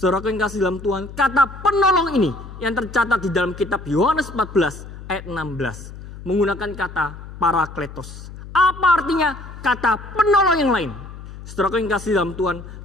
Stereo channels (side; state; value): left; noise; hum, 14 dB below the sound